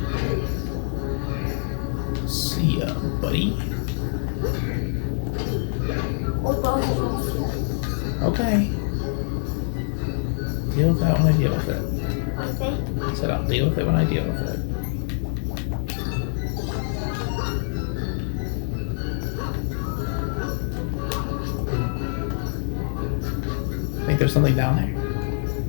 See ya, buddy. Okay. Deal with that when I deal with it. Okay. I said I'll deal with it when I deal with it. Think there's something down there?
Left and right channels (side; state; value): right; silent; digital silence